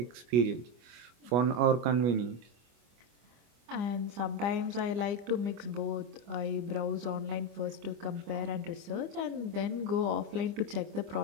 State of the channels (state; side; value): late; left; 25 ms